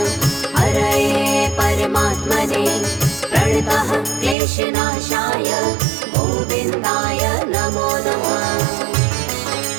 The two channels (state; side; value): drops out; left; at 4.4 s